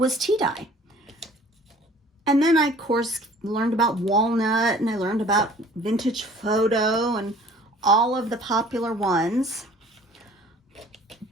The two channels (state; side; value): normal; both; correlation 0.50